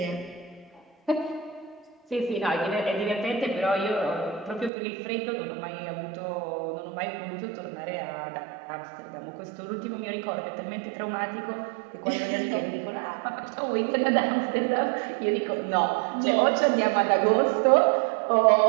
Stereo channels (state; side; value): drops out; left; at 4.7 s